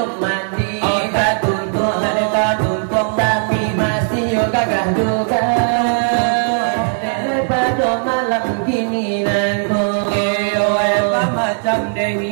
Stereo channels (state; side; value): silent; left; 61 dB below the other